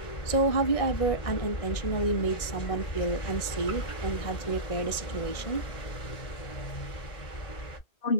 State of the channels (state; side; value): late; right; 1.6 ms